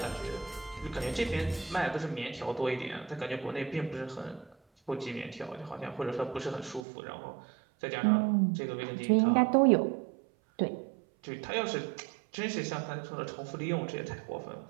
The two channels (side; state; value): left; drops out; at 6.8 s